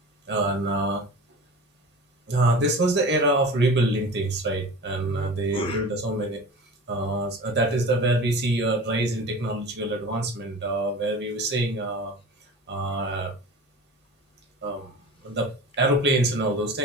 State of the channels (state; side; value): normal; both; correlation 0.36